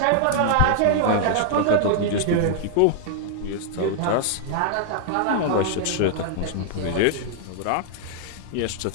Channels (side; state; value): both; different; correlation 0.00